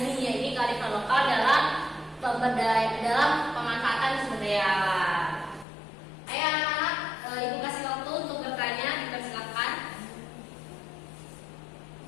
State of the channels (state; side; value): drops out; right; at 5.7 s